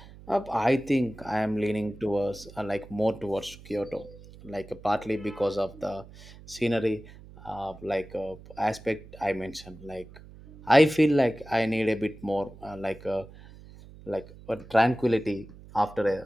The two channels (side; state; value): right; noise; hum, 19 dB below the sound